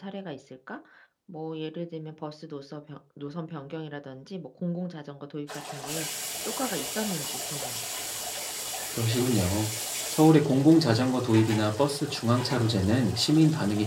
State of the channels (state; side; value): identical; both; correlation 1.00